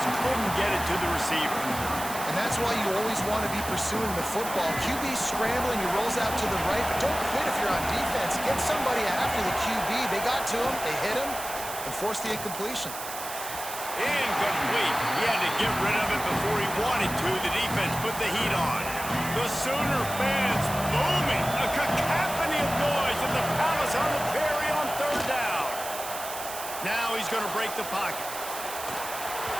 couldn't get it to the receiver. And that's why you always want to be pursuing the football. QB scrambling, he rolls out to the right, but don't quit if you're on defense. Get somebody after the QB. They got to him, they hit him, and forced the incompletion. Incomplete. He had to get rid of it before he wanted to. The defense put the heat on. The Sooner fans booming. A cacophony of noise in the Palace on the Prairie on third down. Now he's going to break the pocket.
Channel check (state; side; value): noise; right; hiss, 9 dB below the sound